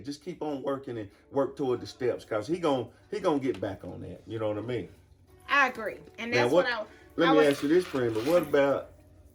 Just keep on working and work toward the steps, because he gonna get back on that. You know what I mean? I agree, and that's now, Let me ask you this, friend. But what about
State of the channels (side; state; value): both; identical; correlation 1.00